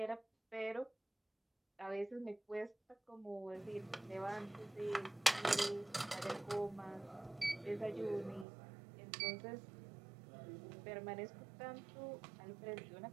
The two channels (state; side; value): drops out; left; at 8.5 s